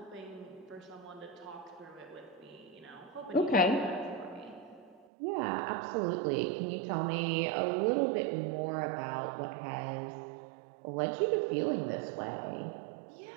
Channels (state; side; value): drops out; left; at 5.1 s